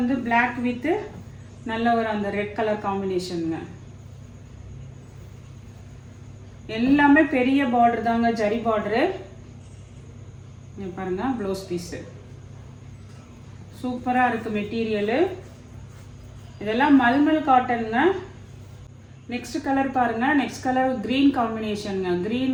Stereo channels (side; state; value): both; identical; correlation 1.00